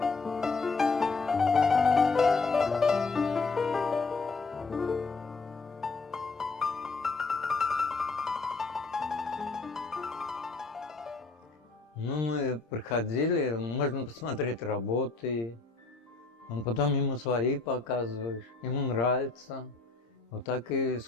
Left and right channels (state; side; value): quieter; right; 4.0 dB